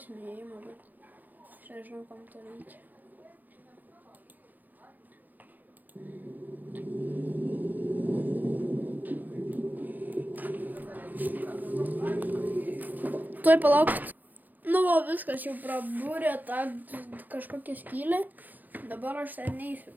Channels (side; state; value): left; late; 0.084 ms